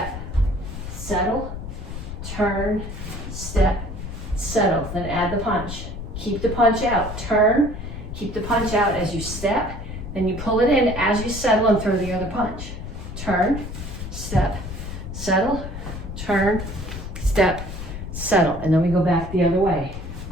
settle. Turn, step, settle. Then add the punch. Keep the punch out. Turn, keep the punch out as you step. Then you pull it in as you settle and throw the other punch. Turn, step, settle. Turn, step, settle. And then we go back the other way.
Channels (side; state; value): left; noise; rumble, 8 dB below the sound